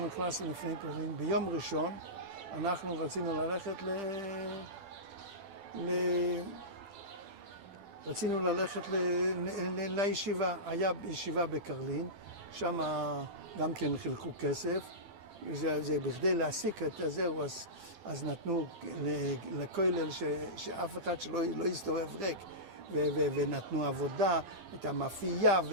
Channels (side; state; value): left; late; 12 ms